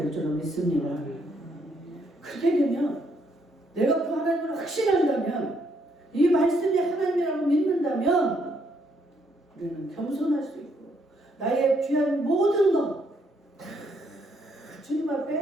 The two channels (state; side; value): normal; both; correlation 0.72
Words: 줄로 믿습니다. 그렇게 되면 내가 그 하나님을 확신한다면 이 말씀이 하나님이라고 믿는다면 우리는 겸손할 수 있고 나의 귀한 모든 것 다 주님